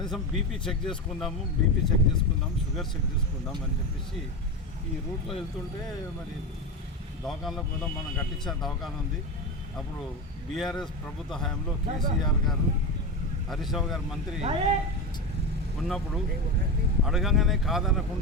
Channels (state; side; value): normal; both; correlation 0.20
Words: బీపీ చెక్ చేసుకుందాము, షుగర్ చెక్ చేసుకుందాం అని చెప్పేసి ఈ రూట్లో వెళ్తుంటే మరి దవాఖానలో కూడా మనం కట్టించిన దవాఖాన ఉంది. అప్పుడు బీఆర్ఎస్ ప్రభుత్వ హయాంలో కేసీఆర్ గారు, హరీష్ రావు గారు మంత్రి ఉన్నప్పుడు అడగంగానే